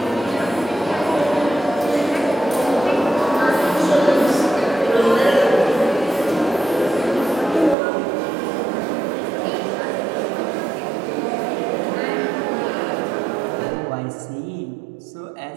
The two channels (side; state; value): left; drops out; at 7.8 s